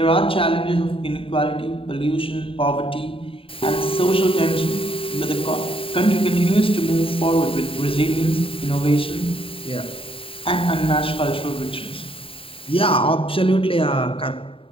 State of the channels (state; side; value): late; right; 0.26 ms